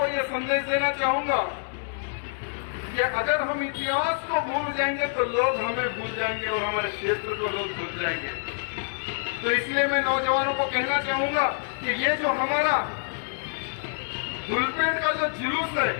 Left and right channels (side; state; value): right; silent; 60 dB below the other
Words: यह संदेश देना चाहूंगा कि अगर हम इतिहास को भूल जाएंगे तो लोग हमें भूल जाएंगे और हमारे क्षेत्र को लोग भूल जाएंगे। तो इसलिए मैं नौजवानों को कहना चाहूंगा कि ये जो हमारा धुलपेट का जो जुलूस है,